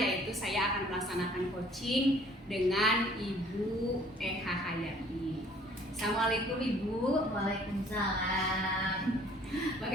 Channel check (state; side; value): normal; both; correlation 0.56